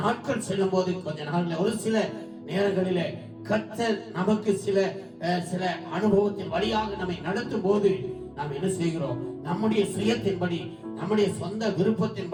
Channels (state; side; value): identical; both; correlation 1.00